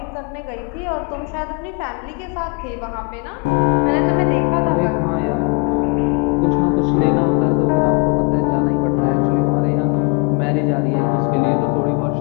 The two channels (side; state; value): right; quieter; 28.7 dB